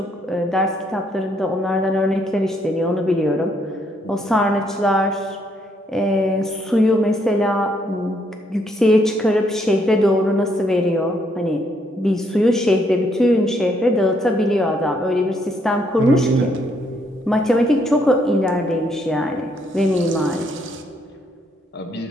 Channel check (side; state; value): both; normal; correlation 0.72